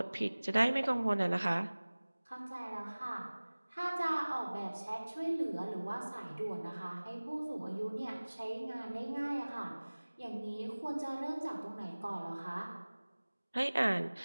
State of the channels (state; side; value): inverted; both; correlation -1.00